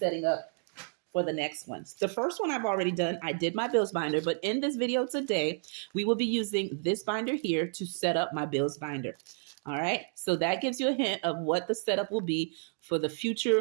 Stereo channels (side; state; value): left; silent; 57 dB below the other